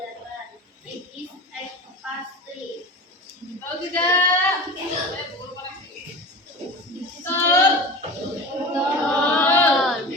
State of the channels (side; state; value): both; normal; correlation 0.32